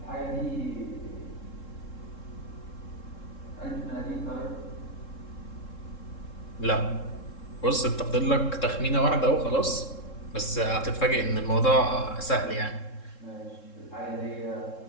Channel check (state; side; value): late; right; 3.7 ms